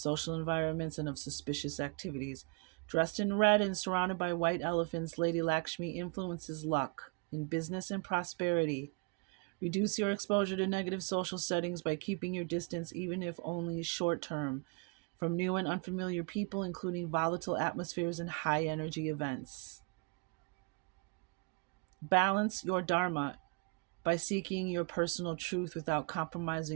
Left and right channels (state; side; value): quieter; left; 33.4 dB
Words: environments and of suspicious activities. Dressed in red and surrounded by white elephants, Lady Lakshmi influences luck in business and prosperity. Reduce your exposure to negative social settings by keeping your distance, even if only short term, from new and unfamiliar people, including volatile atmospheres and high energy events. Balance your dharma by seeking your personal truth without